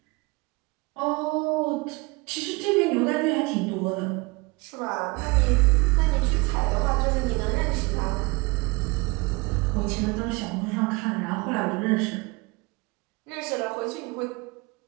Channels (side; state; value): left; quieter; 26.1 dB